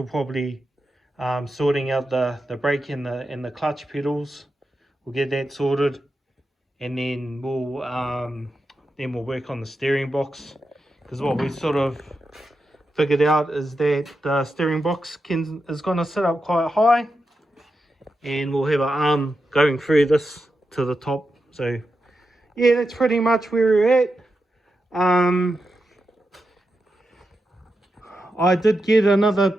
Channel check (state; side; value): normal; both; correlation 0.88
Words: probably sorting out the brake and the clutch pedals. We'll get that sorted, and then we'll work on the steering box, because what we sort of figured out is that the steering box is going to sit up quite high, and we'll have an arm going through this to the top. So yeah, that's pretty much where we're at. I did